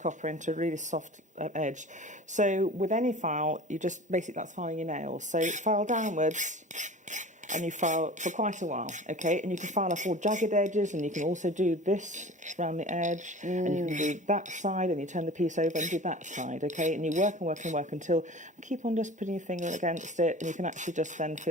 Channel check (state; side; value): normal; both; correlation 0.39